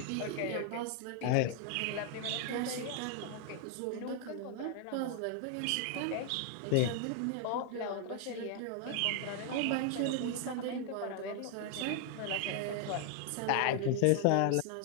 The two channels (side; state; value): both; different; correlation 0.00